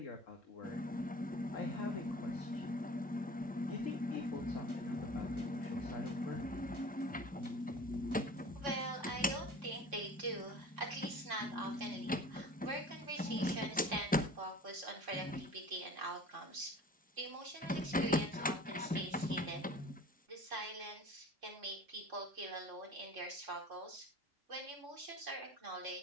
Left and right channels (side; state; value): both; normal; correlation 0.43